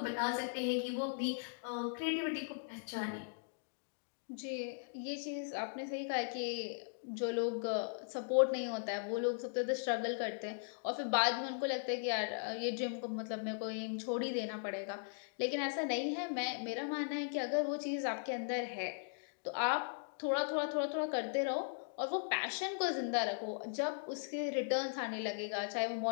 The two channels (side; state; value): right; silent; digital silence